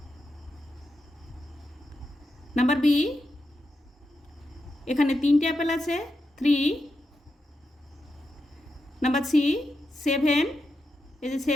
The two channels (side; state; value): both; normal; correlation 0.87